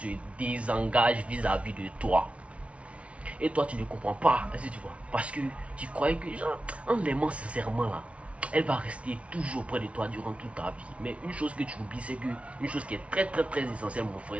désengage vis-à-vis de toi. Et toi, tu ne comprends pas, est-ce que tu vois? Parce que tu croyais que, genre, en l'aimant sincèrement là, elle va rester toujours près de toi durant toute ta vie. Mais une chose que tu oublies, c'est que, une chose qui est très très très essentielle, mon frère,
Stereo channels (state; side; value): late; left; 0.062 ms